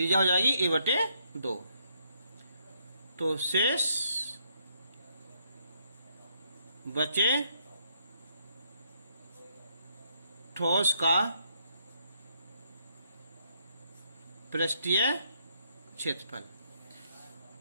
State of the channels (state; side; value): inverted; both; correlation -0.73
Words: हो जाएगी a/2। तो शेष बचे ठोस का पृष्ठीय क्षेत्रफल।